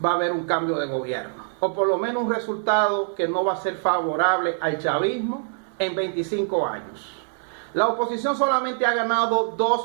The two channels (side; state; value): left; silent; digital silence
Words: va a haber un cambio de gobierno. O por lo menos un resultado que no va a ser favorable al chavismo en 25 años. La oposición solamente ha ganado